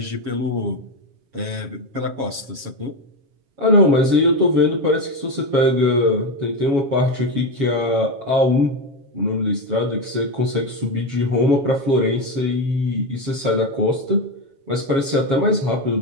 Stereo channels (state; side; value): late; left; 7.3 ms